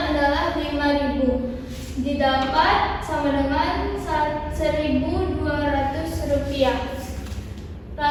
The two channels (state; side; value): identical; both; correlation 1.00